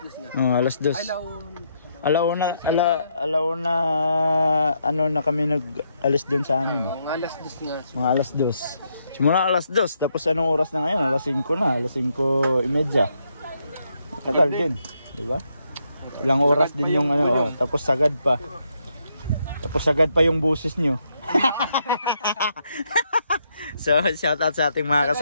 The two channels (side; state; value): both; inverted; correlation -0.77